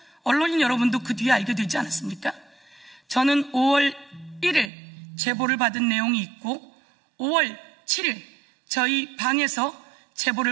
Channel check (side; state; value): left; drops out; at 4.7 s